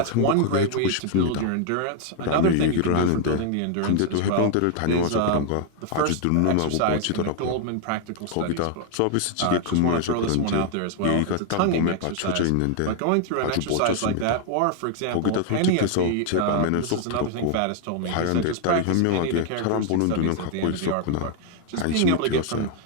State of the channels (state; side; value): different; both; correlation 0.00